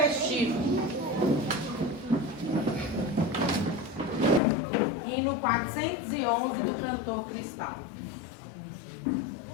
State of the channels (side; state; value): right; drops out; at 4.4 s